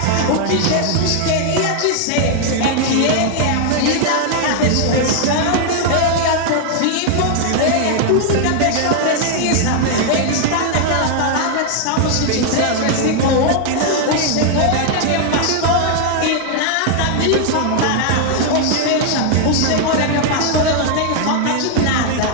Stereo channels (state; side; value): different; both; correlation 0.00